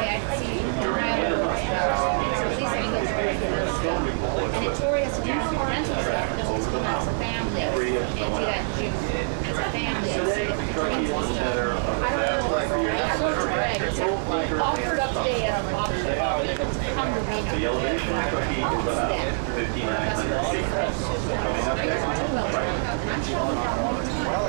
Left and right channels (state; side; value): silent; left; digital silence